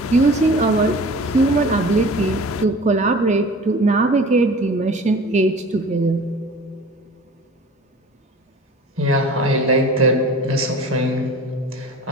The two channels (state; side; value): normal; both; correlation 0.42